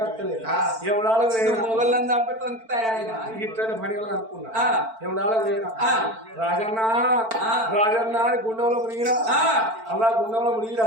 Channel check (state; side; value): late; left; 4.5 ms